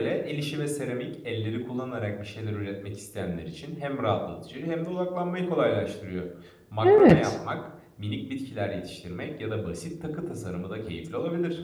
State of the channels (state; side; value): identical; both; correlation 1.00